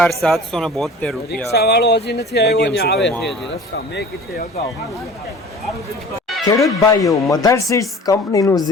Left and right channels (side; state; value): both; normal; correlation 0.43